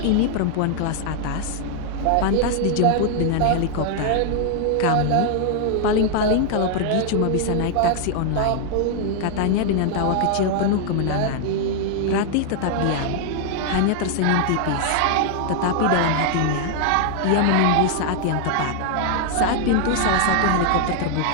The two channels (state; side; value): different; both; correlation -0.01